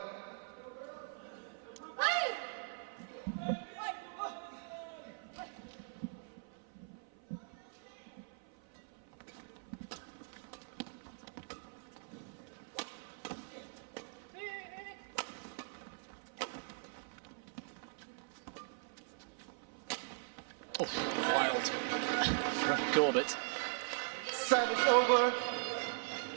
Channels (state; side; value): silent; left; 51 dB below the other